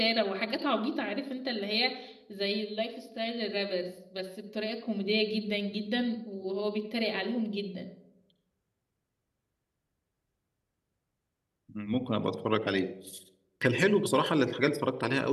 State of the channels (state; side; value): identical; both; correlation 1.00